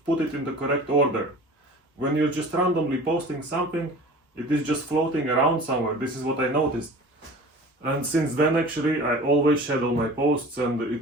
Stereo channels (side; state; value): both; normal; correlation 0.41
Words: put it in the correct order. When you're just randomly posting something, it is just floating around somewhere. This is what I noticed. And since then actually I always schedule my posts, and